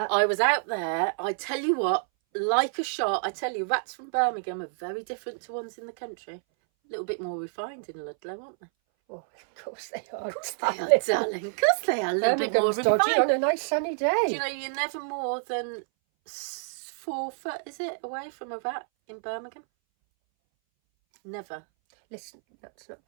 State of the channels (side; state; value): left; silent; 59 dB below the other